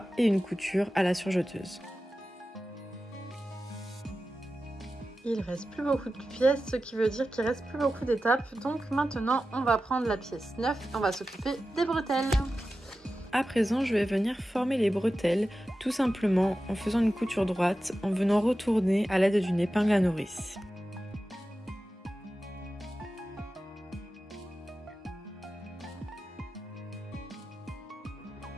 et une couture à la surjeteuse. Il reste plus beaucoup de pièces, ce qui veut dire qu'il reste plus beaucoup d'étapes. Donc maintenant, on va prendre la pièce 9 et on va s'occuper des bretelles. À présent, je vais venir former les bretelles, tout simplement en faisant une couture droite, en venant retourner à l'aide d'une épingle à nourrice.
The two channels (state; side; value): normal; both; correlation 0.93